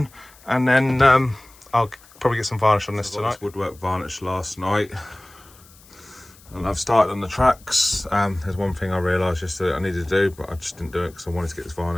and then I'll probably get some varnish on this tonight. Woodwork varnish last night. And I've started on the tracks. There's one thing I realised yesterday I needed to do, but I just didn't do it because I wanted to get this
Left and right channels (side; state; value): left; noise; hiss, 25 dB below the sound